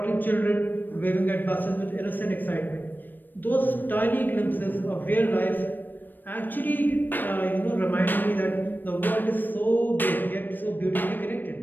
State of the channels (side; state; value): right; late; 0.091 ms